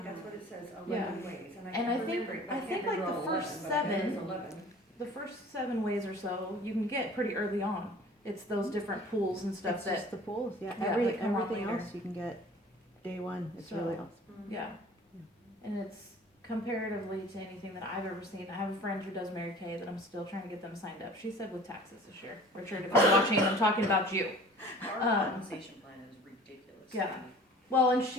that's what it says, Yeah. 11 ways, and I And can't I think- remember it. I think, like, the remember all first 11, but I think seven- it's 11. the first 7 ways or so, you can get pretty early on. It's those different pools and stuff It's that, just the pools, yeah. Yeah, Every, they come on everything later. else you can get day one. It's So- really awesome. yeah. And it's comparatively to anything that I've ever seen. I have a friend who does Mary Kay that I'm still trying to get them signed up. She said with taxes this year. Richard, if you're watching, I'm talking about you. Our compensation plan is ridiculous. Yeah. Well, and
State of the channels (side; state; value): both; normal; correlation 0.46